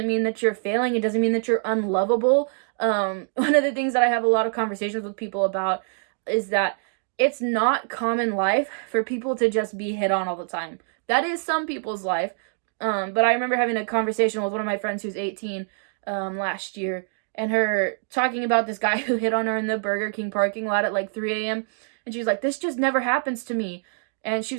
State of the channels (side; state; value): left; silent; 58 dB below the other